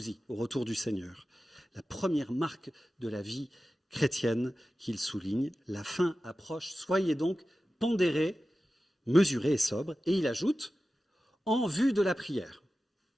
au retour du Seigneur. La première marque de la vie chrétienne qu'il souligne, la fin approche, soyez donc pondérés, mesurés et sobres. Et il ajoute, en vue de la prière.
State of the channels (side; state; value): both; normal; correlation 0.94